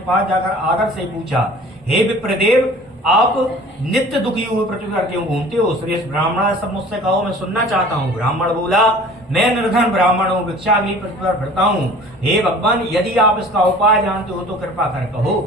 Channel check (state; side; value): normal; both; correlation 0.46